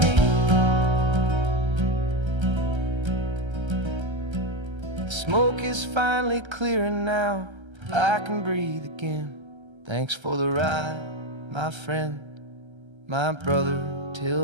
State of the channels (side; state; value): left; late; 1.3 ms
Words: me. The smoke is finally clearing now, I can breathe again. Thanks for the ride, my friend, my brother,